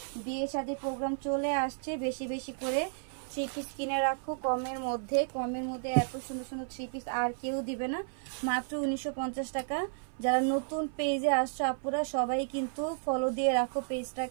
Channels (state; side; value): silent; left; 56 dB below the other